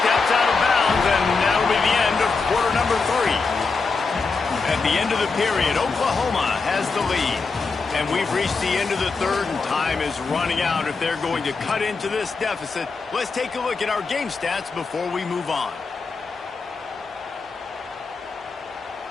out of bounds, and that'll be the end of quarter number 3. At the end of the period, Oklahoma has the lead. And we've reached the end of the 3rd, and time is running out if they're going to cut into this deficit. Let's take a look at our game stats before we move on.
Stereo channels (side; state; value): right; quieter; 4.4 dB